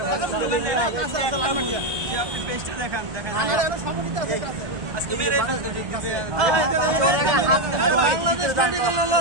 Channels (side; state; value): left; late; 1.1 ms